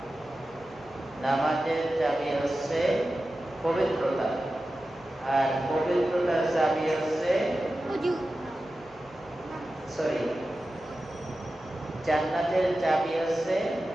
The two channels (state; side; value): noise; right; hum, 27 dB below the sound